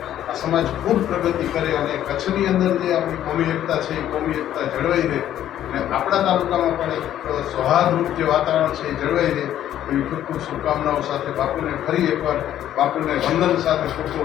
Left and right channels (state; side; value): quieter; right; 11.6 dB